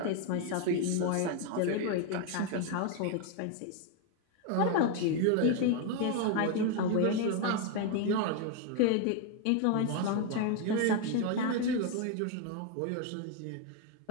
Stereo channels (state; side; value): different; both; correlation 0.01